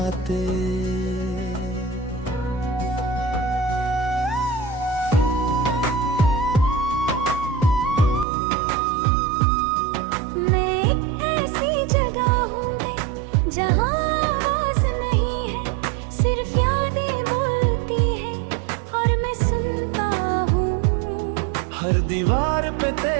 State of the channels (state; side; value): drops out; left; at 8.2 s